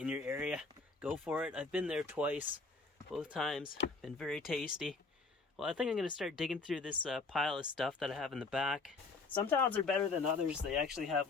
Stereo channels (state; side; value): quieter; right; 3.9 dB